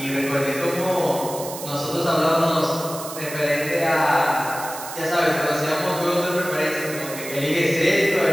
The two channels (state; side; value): noise; right; hiss, 11 dB below the sound